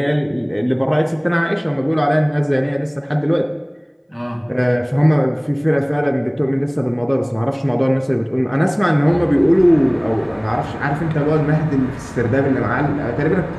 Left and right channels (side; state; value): both; identical; correlation 1.00